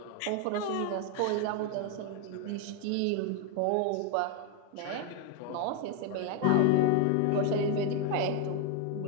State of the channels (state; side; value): different; both; correlation 0.01